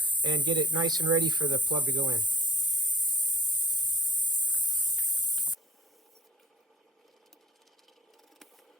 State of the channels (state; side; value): normal; both; correlation 0.50